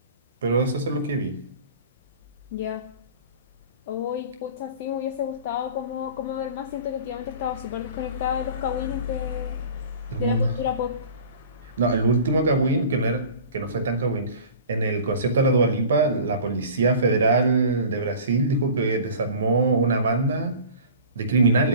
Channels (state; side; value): inverted; both; correlation -0.41